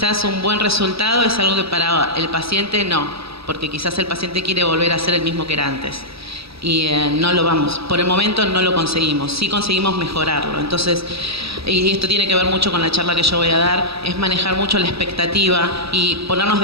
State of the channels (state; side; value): late; left; 0.77 ms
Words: un buen resultado es algo que para el paciente no, porque quizás el paciente quiere volver a ser el mismo que era antes. Y no lo vamos, por el momento no lo conseguimos, sí conseguimos mejorarlo. Entonces, y esto tiene que ver mucho con la charla que yo voy a dar, es manejar mucho la expectativa y ponernos